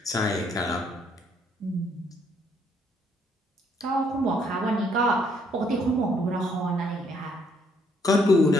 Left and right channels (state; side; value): normal; both; correlation 0.68